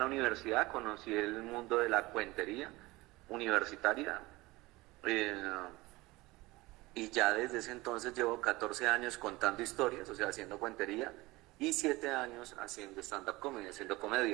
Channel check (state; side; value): quieter; left; 21.0 dB